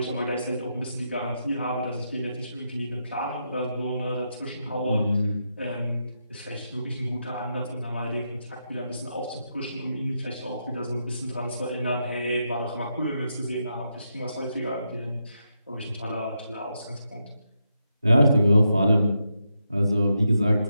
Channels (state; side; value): inverted; both; correlation -0.83